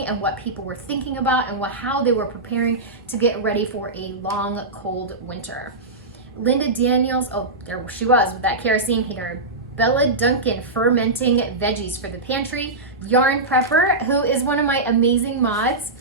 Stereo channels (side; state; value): left; quieter; 3.0 dB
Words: and what people were thinking about and how they were preparing to get ready for a long, cold winter. Linda Daniels, oh, there she was with that kerosene heater. Bella Duncan fermenting veggies for the pantry. Yarn Prepper, who is one of my amazing mods,